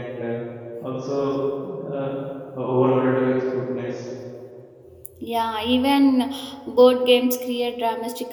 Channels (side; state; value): both; identical; correlation 1.00